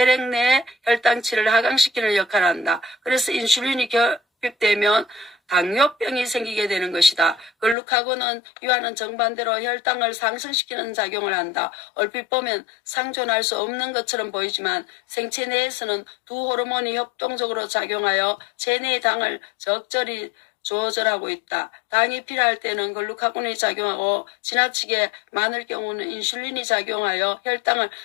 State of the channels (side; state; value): right; drops out; at 7.8 s